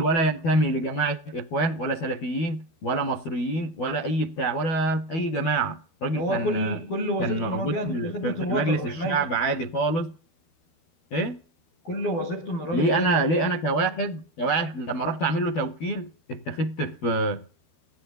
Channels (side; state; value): right; late; 12 ms